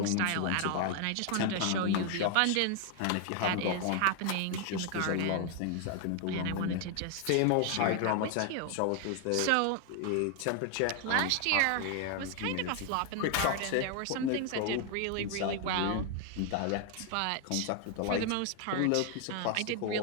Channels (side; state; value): both; different; correlation 0.00